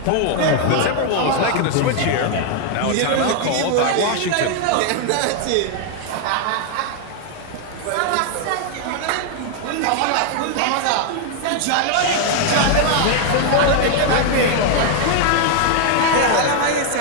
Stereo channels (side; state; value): both; different; correlation 0.00